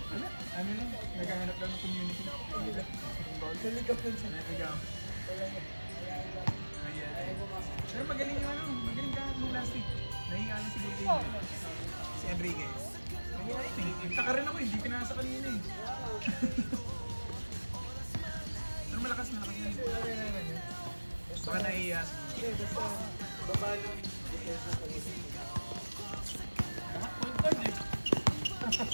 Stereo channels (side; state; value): both; inverted; correlation -1.00